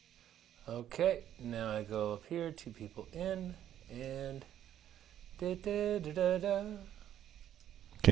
Okay, now I go up here, two people in, and da da da da da.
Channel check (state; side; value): quieter; left; 10.9 dB